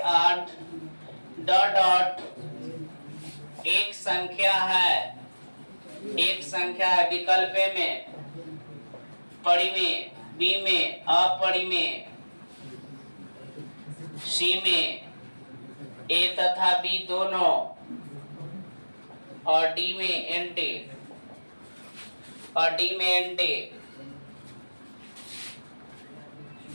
डॉट डॉट एक संख्या है, एक संख्या है विकल्प में, परिमेय, बी में अपरिमेय, सी में ए तथा बी दोनों, और डी में एंटी, और डी में एंटी।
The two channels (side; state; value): both; inverted; correlation -1.00